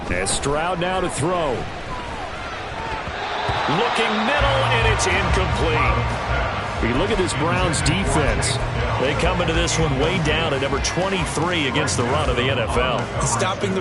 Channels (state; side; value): identical; both; correlation 1.00